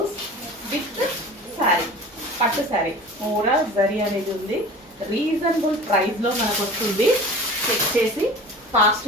with sari, పట్టు శారీ, ఓవరాల్ జరీ అనేది ఉంది. రీజనబుల్ ప్రైస్లో మనకు వస్తుంది. చెక్ చేసి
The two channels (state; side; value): normal; both; correlation 0.39